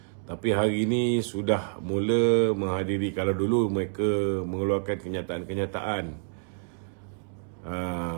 tapi hari ini sudah mula menghadiri. Kalau dulu mereka mengeluarkan kenyataan-kenyataan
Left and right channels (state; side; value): silent; left; 59 dB below the other